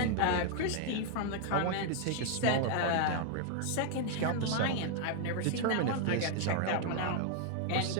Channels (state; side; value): different; both; correlation -0.01